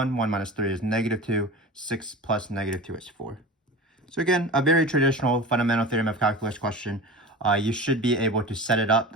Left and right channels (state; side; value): normal; both; correlation 0.33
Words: 1 minus 3 is -2. 6 plus -2 is 4. So again, a very traditional fundamental theorem of calculus question. You should be able to set it up.